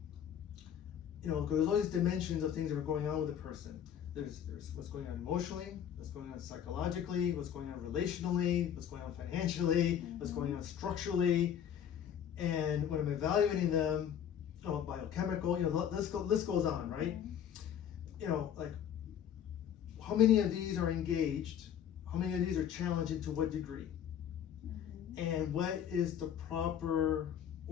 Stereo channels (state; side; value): quieter; right; 9.2 dB